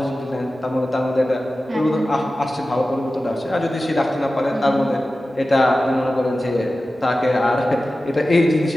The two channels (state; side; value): normal; both; correlation 0.95